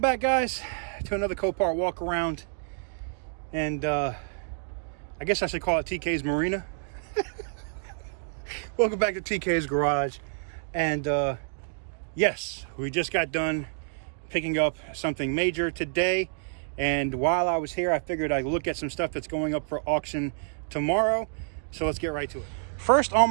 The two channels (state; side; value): silent; left; digital silence